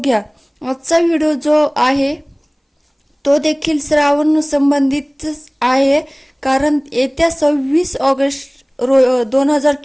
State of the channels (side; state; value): both; identical; correlation 1.00